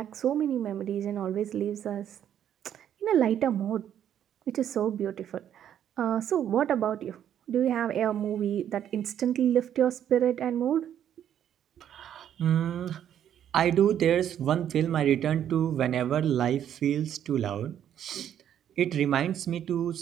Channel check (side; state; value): left; quieter; 10.0 dB